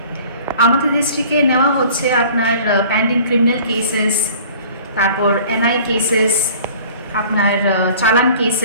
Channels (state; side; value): inverted; both; correlation -0.48